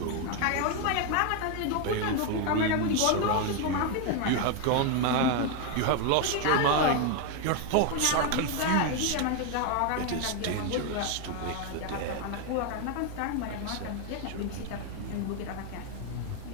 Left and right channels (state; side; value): different; both; correlation 0.01